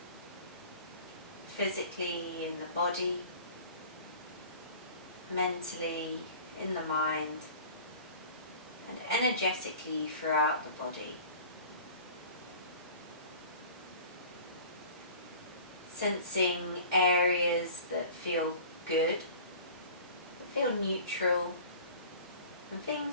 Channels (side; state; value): both; inverted; correlation -0.43